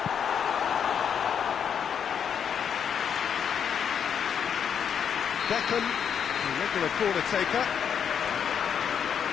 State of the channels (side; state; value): right; quieter; 7.8 dB